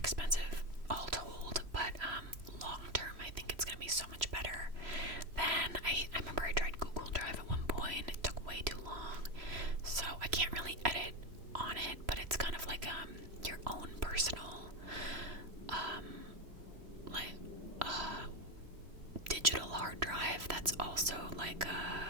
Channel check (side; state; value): left; late; 3.0 ms